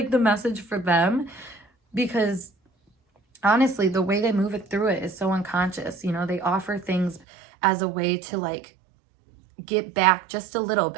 the message for them, because honestly, the way they move it through it is so unconscious. You know, they offer things as a way to like get back just a little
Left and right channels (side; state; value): left; drops out; at 7.2 s